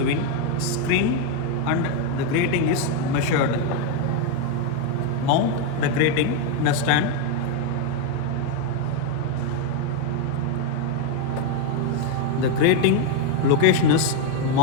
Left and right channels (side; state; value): both; different; correlation 0.01